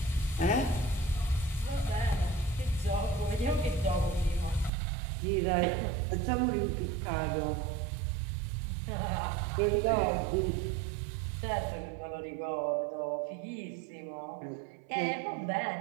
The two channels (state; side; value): drops out; left; at 4.7 s